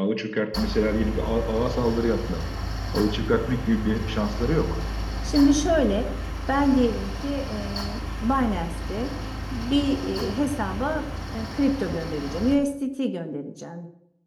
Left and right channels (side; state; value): both; identical; correlation 1.00